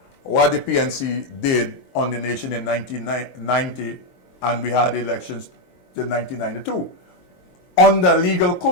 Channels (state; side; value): late; right; 22 ms